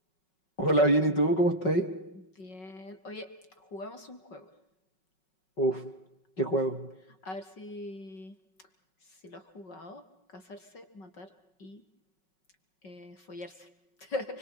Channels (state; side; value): late; right; 5.4 ms